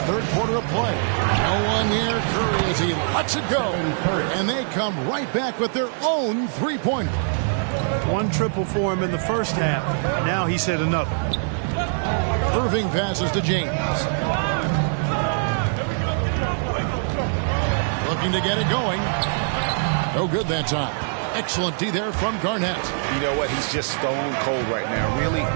third quarter of play. No one near Curry as he lets it go. And they come right back with their own three-pointer. 1 triple for him in the first half. Now he's hit another. Irving passes to James. Looking to get it going. No good that time. Excellent D there from Garnett. You know what? He's just stone cold right now. Really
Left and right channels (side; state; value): left; silent; digital silence